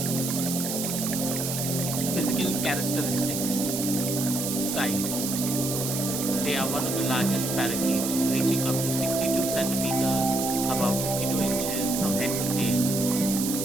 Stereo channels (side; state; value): right; noise; hiss, 3 dB below the sound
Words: Physical characteristics: size: they are one of the largest parakeets, reaching up to 62 centimeters, about 52 inches from head to tail.